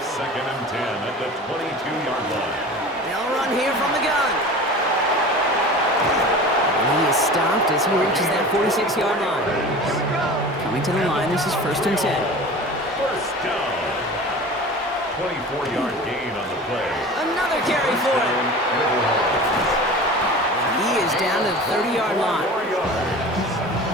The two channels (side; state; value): both; normal; correlation 0.37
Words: and 10 at the 22-yard line. They'll run here from the gun. And he is stopped as he reaches that 46-yard line. Coming to the line, this is 1st and 10. First down. 24-yard gain on the play. Another carry for him. He is down to the 30-yard line.